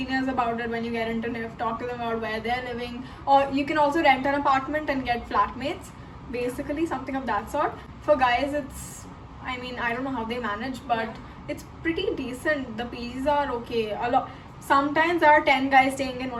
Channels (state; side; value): identical; both; correlation 1.00